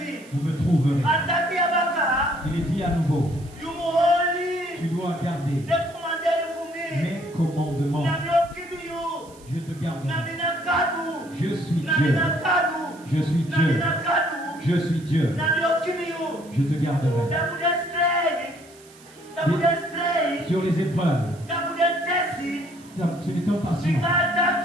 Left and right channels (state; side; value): noise; right; hiss, 25 dB below the sound